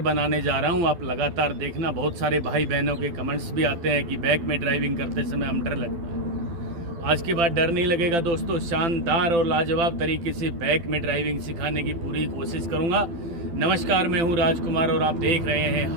जा रहा हूं। आप लगातार देखना, बहुत सारे भाई बहनों के कमेंट्स भी आते हैं कि बैक में ड्राइविंग करते समय हम डर लगता है। आज के बाद डर नहीं लगेगा दोस्तों। शानदार और लाजवाब तरीके से बैक में ड्राइविंग सिखाने की पूरी कोशिश करूंगा। नमस्कार, मैं हूं राजकुमार और आप देख रहे हैं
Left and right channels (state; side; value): late; left; 12 ms